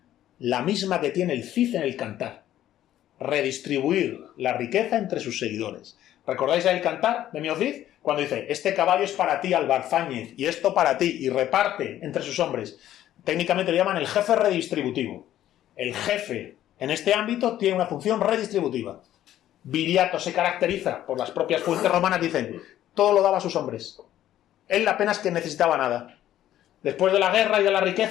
La misma que tiene el Cid en el Cantar. Redistribuir la riqueza entre sus seguidores. ¿Recordáis el Cantar de Mio Cid? Cuando dice, este caballo es para ti, Albarzáñez, y esto para ti, y reparte entre sus hombres. Técnicamente le llaman el jefe redistributivo. El jefe, en este ámbito, tiene una función redistributiva. Viriato se caracteriza, por las propias fuentes romanas, dicen, todo lo daba a sus hombres. Él apenas que necesitaba nada. Después de la guerra y de la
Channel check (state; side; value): quieter; right; 12.4 dB